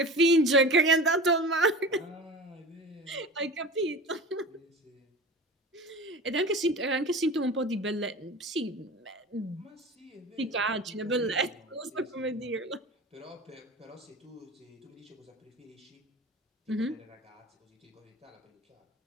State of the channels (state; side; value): normal; both; correlation 0.35